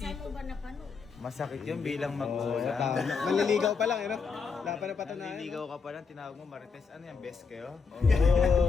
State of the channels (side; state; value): right; quieter; 5.2 dB